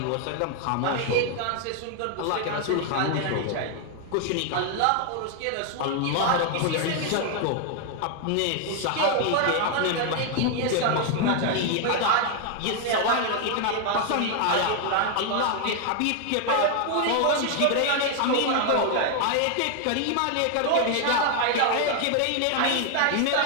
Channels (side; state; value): both; different; correlation 0.01